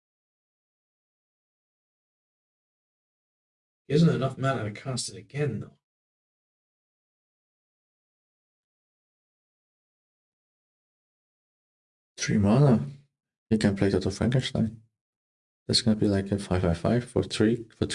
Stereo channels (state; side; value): identical; both; correlation 1.00